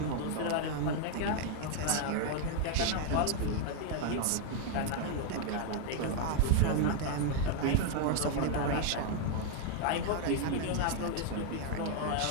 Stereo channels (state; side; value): different; both; correlation 0.00